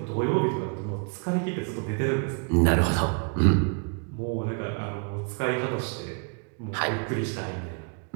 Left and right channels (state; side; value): quieter; left; 38.5 dB